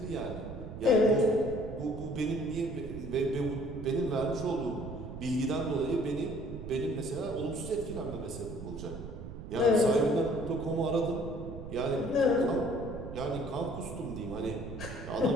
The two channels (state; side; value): noise; right; rumble, 10 dB below the sound